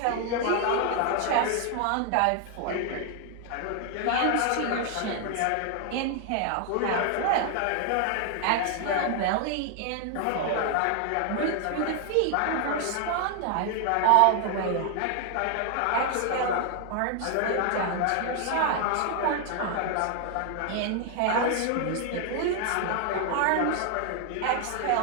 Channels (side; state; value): both; different; correlation 0.00